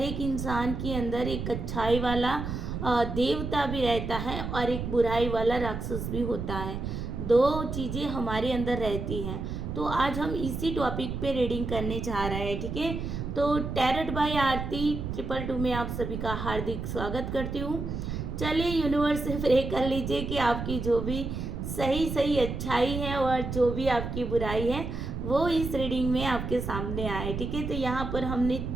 इंसान के अंदर एक अच्छाई वाला देवता भी रहता है और एक बुराई वाला राक्षस भी होता है। दो चीज़ें हमारे अंदर रहती हैं। तो आज हम इसी टॉपिक पे रीडिंग करने जा रहे हैं, ठीक है। तो टैरट बाय आरती 222 में आप सभी का हार्दिक स्वागत करती हूँ। चलिए यूनिवर्स से प्रे कर लीजिए कि आपकी जो भी सही सही अच्छाई है और जो भी आपकी बुराई है वो इस रीडिंग में आपके सामने आए, ठीक है। तो यहाँ पर हमने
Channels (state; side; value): noise; right; rumble, 5 dB below the sound